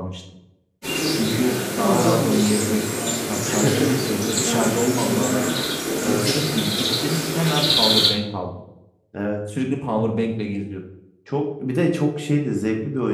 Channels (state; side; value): identical; both; correlation 1.00